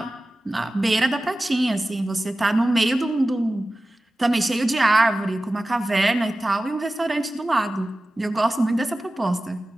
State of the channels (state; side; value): normal; both; correlation 0.95